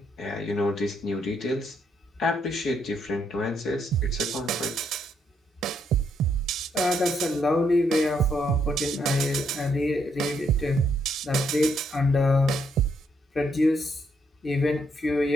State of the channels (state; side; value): normal; both; correlation 0.75